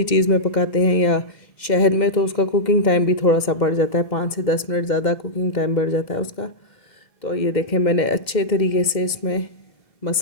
चीज़ में पकाते हैं या शहद में, तो उसका कुकिंग टाइम भी थोड़ा सा बढ़ जाता है, 5 से 10 मिनट ज़्यादा कुकिंग टाइम बढ़ जाता है उसका। तो ये देखें, मैंने अच्छे तरीके से इसमें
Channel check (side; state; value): right; late; 2.1 ms